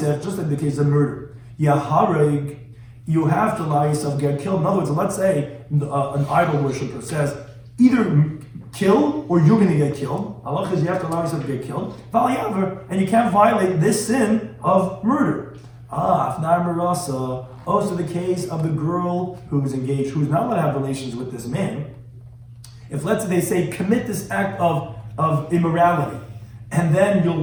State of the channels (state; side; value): identical; both; correlation 1.00